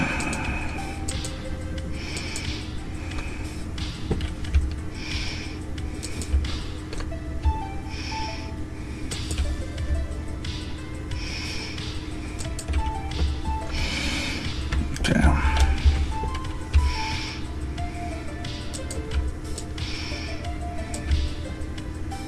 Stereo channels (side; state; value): both; identical; correlation 1.00